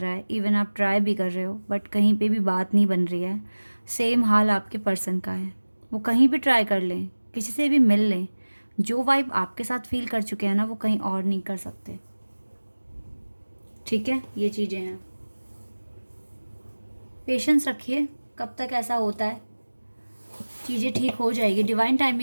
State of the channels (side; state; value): both; inverted; correlation -1.00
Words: है, इवन आप ट्राई भी कर रहे हो बट कहीं पे भी बात नहीं बन रही है, सेम हाल आपके पर्सन का है। वो कहीं भी ट्राई कर लें, किसी से भी मिल लें, जो वाइब आपके साथ फील कर चुके हैं ना, वो कहीं और नहीं कर सकते। ठीक है, ये चीज़ें हैं। पेशेंस रखिए, कब तक ऐसा होता है, चीज़ें ठीक हो जाएगी। डिवाइन